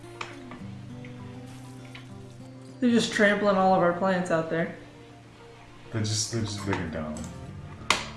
They're just trampling all of our plants out there. They're just big and dumb.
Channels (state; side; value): identical; both; correlation 1.00